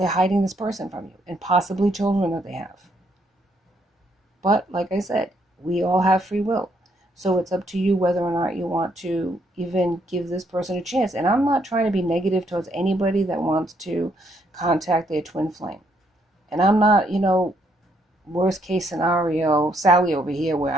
hiding this person from you and possibly children that they have. But like I said, we all have free will. So it's up to you whether or not you want to even give this person a chance. And I'm not trying to be negative towards anybody that wants to contact their twin flame. And I'm not, worst case scenario, Sally over here, where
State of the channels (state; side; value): normal; both; correlation 0.72